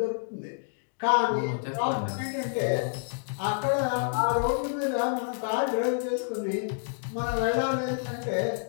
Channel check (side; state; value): right; silent; digital silence